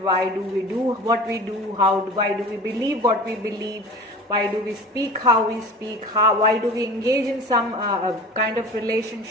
do we do what we do, why do we believe what we believe, why do we speak how we speak, why do we engage in some kind of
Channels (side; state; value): both; normal; correlation 0.38